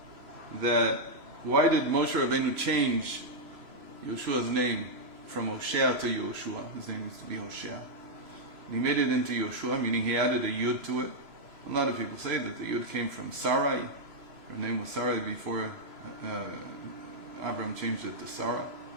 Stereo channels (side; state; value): left; late; 3.0 ms